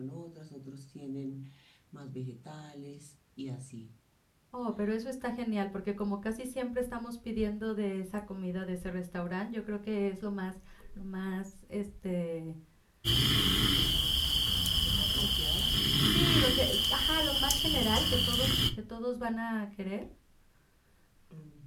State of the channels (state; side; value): identical; both; correlation 1.00